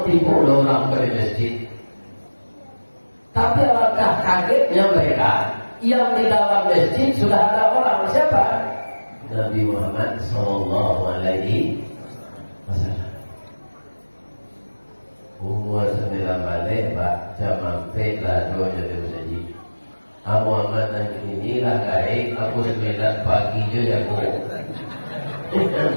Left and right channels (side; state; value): both; inverted; correlation -1.00